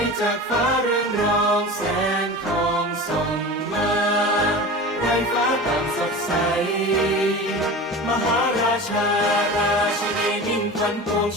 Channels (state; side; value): normal; both; correlation 0.33